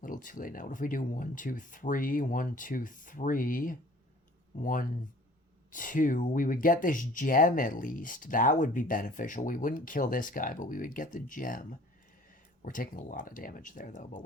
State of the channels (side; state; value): both; normal; correlation 0.51